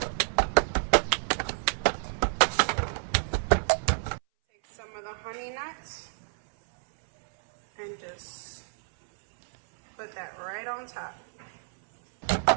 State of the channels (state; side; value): silent; left; 59 dB below the other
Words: Honey nuts and just put that right on top.